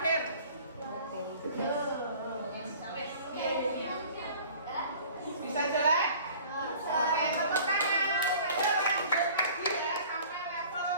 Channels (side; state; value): both; inverted; correlation -0.48